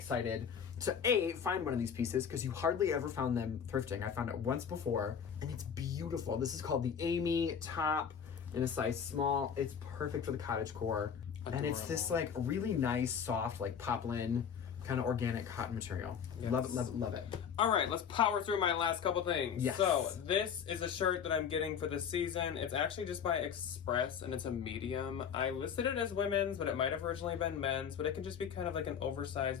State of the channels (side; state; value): right; quieter; 7.4 dB